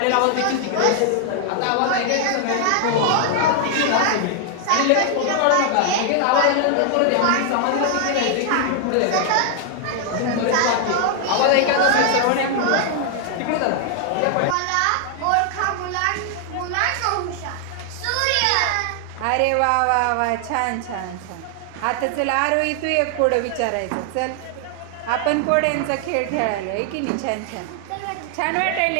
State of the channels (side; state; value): both; different; correlation 0.00